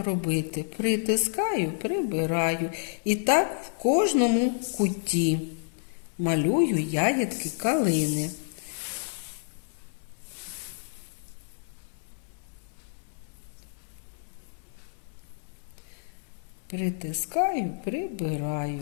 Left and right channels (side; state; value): right; silent; digital silence